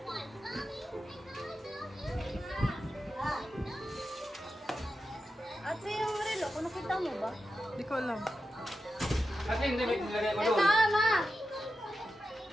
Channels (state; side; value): normal; both; correlation 0.90